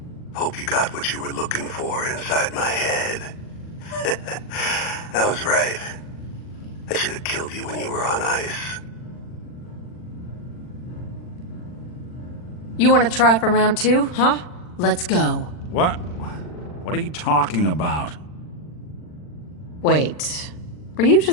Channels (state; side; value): late; right; 40 ms